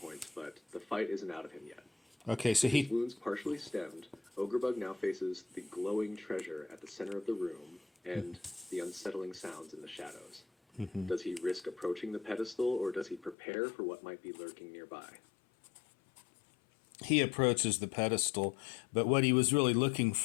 points, but the fight isn't out of him yet. Okay, so With his he. wounds partially stemmed, Ogrebug now faces the glowing treasure at the center of the room and the unsettling sounds in the shadows. Does he risk approaching the pedestal, or does he prepare for what might be lurking nearby? He approaches the pedestal, but what he was really looking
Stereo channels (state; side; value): drops out; right; at 13.4 s